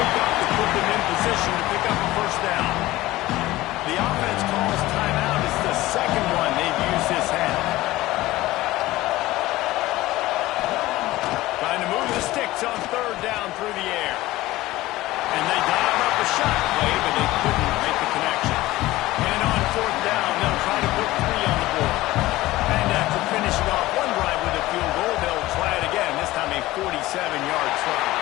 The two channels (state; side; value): quieter; right; 17.6 dB